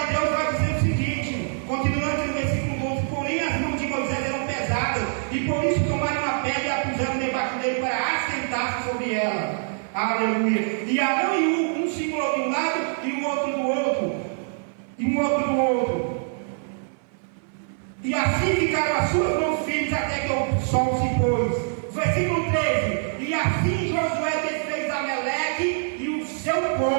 Deus vai dizer o seguinte, continuando no versículo 12: porém as mãos de Moisés eram pesadas, e por isso tomaram uma pedra e a puseram debaixo dele para assentar-se sobre ela. Aleluia. E Arão e um segurou de um lado e o outro do outro. E um outro do outro. E assim ficaram as suas mãos firmes até que o sol se pôs. Versículo 13: e assim Josué desfez Amaleque e o seu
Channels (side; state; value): left; silent; 58 dB below the other